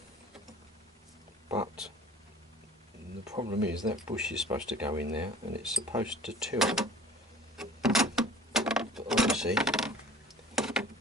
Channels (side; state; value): both; normal; correlation 0.46